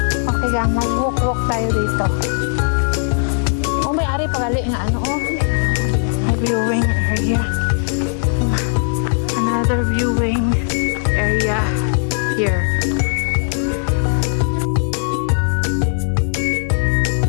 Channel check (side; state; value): right; silent; digital silence